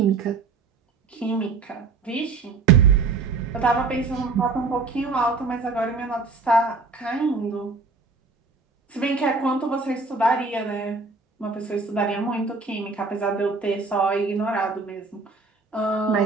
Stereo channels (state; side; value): quieter; left; 4.2 dB